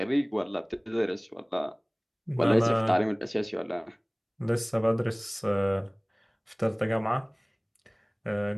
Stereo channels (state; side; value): identical; both; correlation 1.00